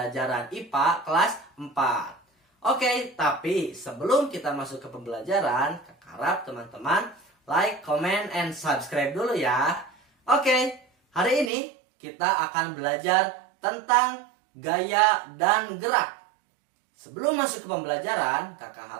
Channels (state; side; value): drops out; left; at 11.5 s